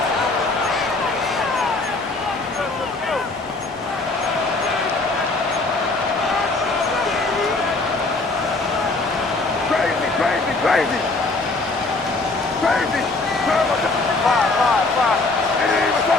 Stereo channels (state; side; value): quieter; right; 3.3 dB